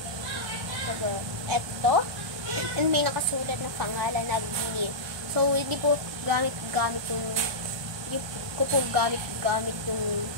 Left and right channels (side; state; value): both; normal; correlation -0.13